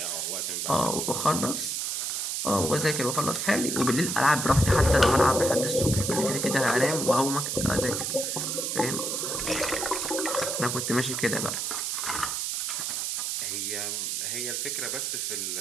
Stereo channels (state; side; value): noise; right; hiss, 1 dB below the sound